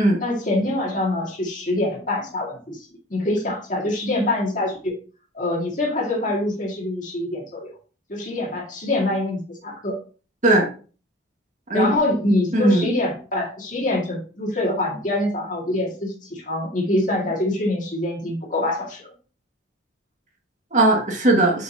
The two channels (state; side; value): normal; both; correlation 0.38